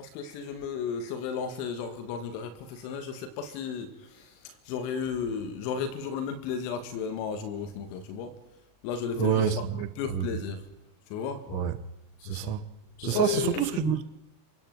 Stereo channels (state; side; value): late; right; 39 ms